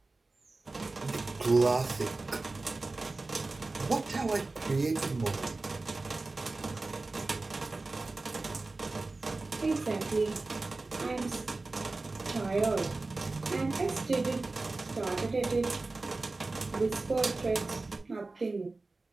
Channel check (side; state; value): left; quieter; 3.4 dB